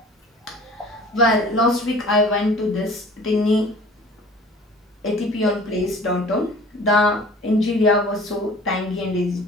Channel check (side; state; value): both; normal; correlation 0.46